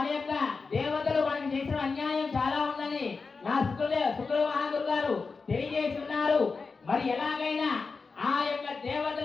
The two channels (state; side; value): quieter; right; 4.5 dB